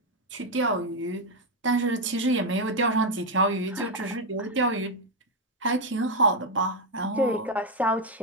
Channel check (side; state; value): both; normal; correlation 0.04